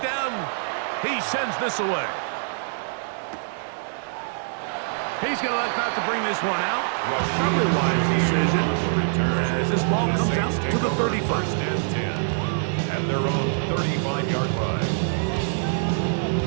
He sends this away. He's going to elect not to bring this one out. Probably a wise decision. As this ball comes out to the 35. First and 10 at their own 35-yard line.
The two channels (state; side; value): silent; left; digital silence